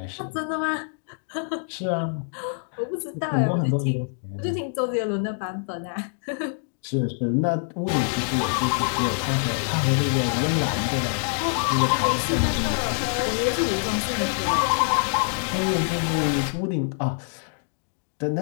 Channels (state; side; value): silent; right; digital silence